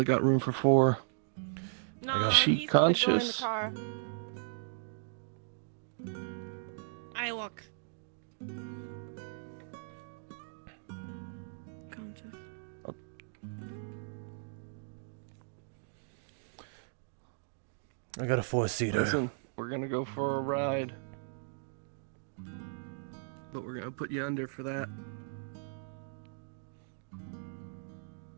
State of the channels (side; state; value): left; silent; digital silence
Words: got room for 4. No, Is she he's gonna go in the conscious? car. Shylock. Countess. I got a 4-seater. Listen, we're gonna go for a ride. But we're gonna put you under for that.